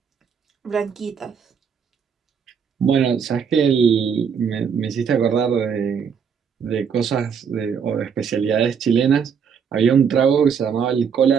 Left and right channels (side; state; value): left; quieter; 6.9 dB